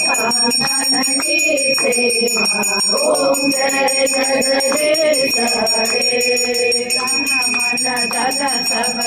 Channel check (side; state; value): both; identical; correlation 1.00